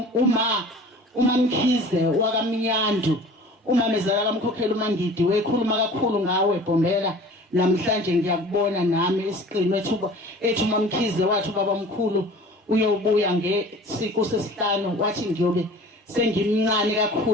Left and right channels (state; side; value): normal; both; correlation 0.44